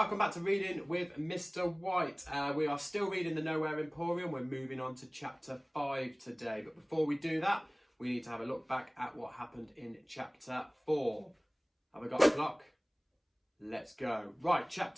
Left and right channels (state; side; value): identical; both; correlation 1.00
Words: back to Reading with Mr. White. We are still reading the Nowhere Emporium. We're moving on to chapter 5 today. But before we do that, we need to have a look back at what happened in chapter 4. Have I got a clock? Let's go. Right,